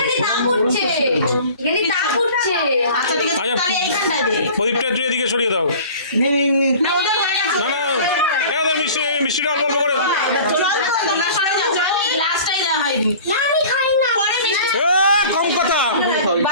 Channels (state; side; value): inverted; both; correlation -0.43